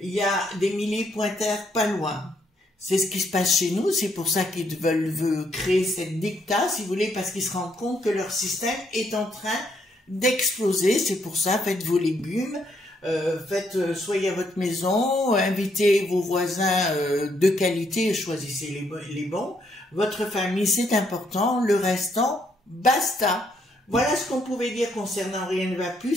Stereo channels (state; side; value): normal; both; correlation 0.73